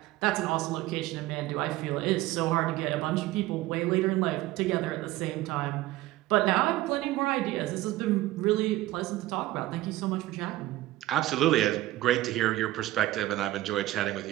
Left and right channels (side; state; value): left; quieter; 16.5 dB